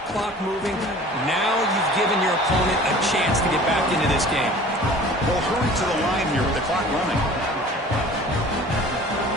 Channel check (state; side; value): normal; both; correlation 0.45